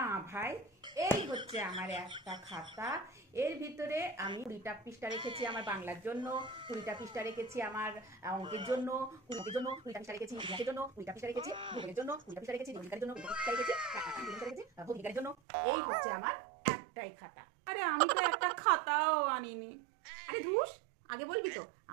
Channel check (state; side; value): drops out; left; at 15.4 s